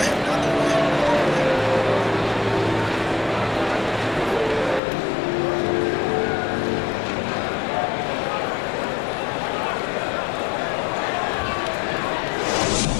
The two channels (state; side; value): drops out; right; at 4.8 s